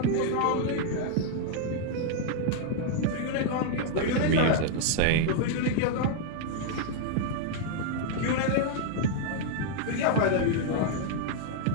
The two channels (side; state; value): both; different; correlation -0.01